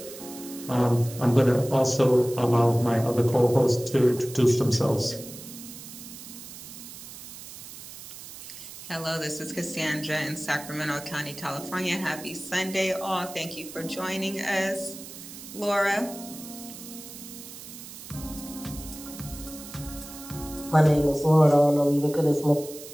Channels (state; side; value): noise; right; hiss, 14 dB below the sound